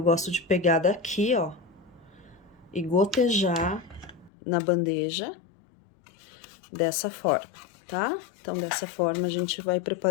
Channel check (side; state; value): right; drops out; at 4.3 s